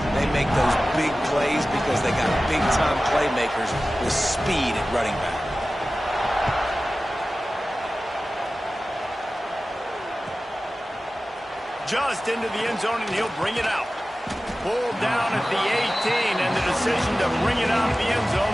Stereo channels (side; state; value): both; normal; correlation 0.96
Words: they make those big plays because they got big-time playmakers with speed at running back. Just into the end zone, and he'll bring it out. Pulled down at the 18, and the decision to bring it out of the end zone